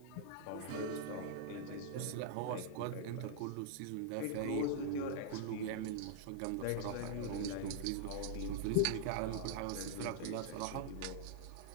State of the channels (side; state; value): both; different; correlation -0.02